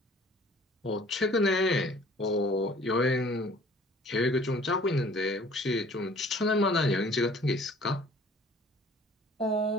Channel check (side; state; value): both; normal; correlation 0.52